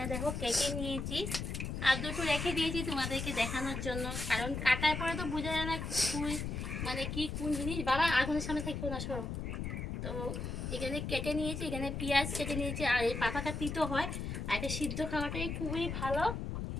দেখো কেটে নিয়েছি, আর দুটো রেখে দিয়েছি তোমাদেরকে দেখানোর জন্য, কারণ কাটার পরে তো বোঝা যায় না মানে কি কোন জিনিস। বাবা আগুনের সামনে থাকতো না, সরো। তো এখানে কেটে নিয়েছি, এখানে পেঁয়াজ কেটে নিয়েছি। আর এই পাতাটা তিতো হয়, আর এটা সিদ্ধ খাওয়াটাই খুবই ভালো।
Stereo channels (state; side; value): noise; left; rumble, 4 dB below the sound